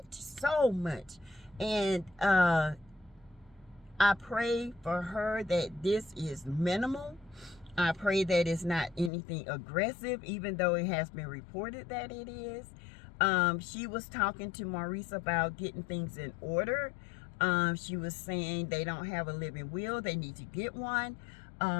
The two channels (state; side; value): drops out; right; at 9.1 s